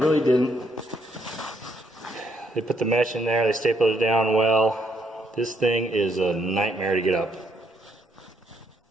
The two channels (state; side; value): normal; both; correlation 0.72